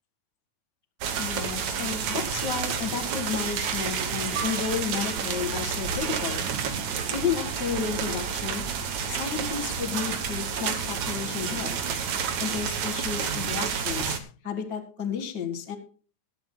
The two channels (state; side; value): late; left; 9.2 ms